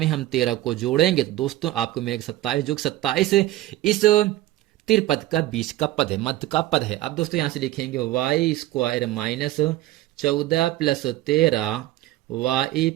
हम 13 को जोड़ेंगे तो दोस्तों आपको मिलेगा 27, जो 27 इस त्रिपद का बीच का पद है, मध्य का पद है। अब दोस्तों यहां से लिखेंगे y स्क्वायर -14 + 13 y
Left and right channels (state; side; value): quieter; left; 15.8 dB